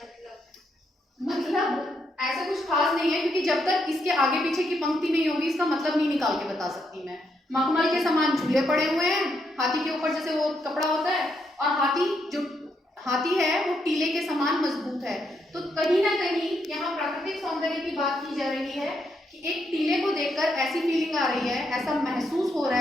मतलब ऐसा कुछ खास नहीं है, क्योंकि जब तक इसके आगे पीछे की पंक्ति नहीं होगी इसका मतलब नहीं निकाल के बता सकती मैं। मखमल के समान झूले पड़े हुए हैं, हाथी के ऊपर जैसे वो कपड़ा होता है, और हाथी है वो टीले के समान मजबूत है। तो कहीं ना कहीं यहाँ प्राकृतिक सौंदर्य की बात की जा रही है कि एक टीले को देखकर ऐसी फीलिंग आ रही है, ऐसा महसूस हो रहा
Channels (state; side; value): normal; both; correlation 0.78